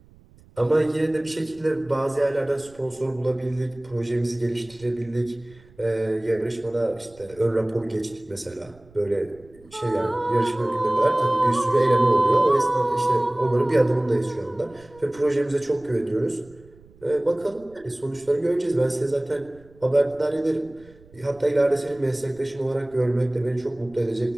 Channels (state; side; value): noise; right; rumble, 26 dB below the sound